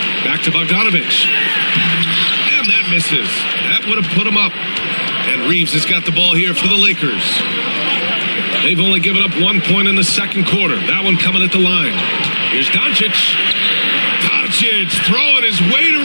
Back to Bogdanovich. And that misses. That would have put him up. And Reeves has got the ball here for the Lakers. They've only given up 1 point in the second quarter. That one coming at the line. Here's Doncic. Doncic throwing his weight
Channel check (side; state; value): both; inverted; correlation -1.00